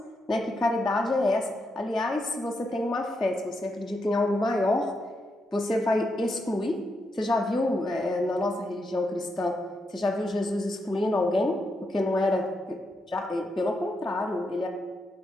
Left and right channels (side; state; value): both; normal; correlation 0.83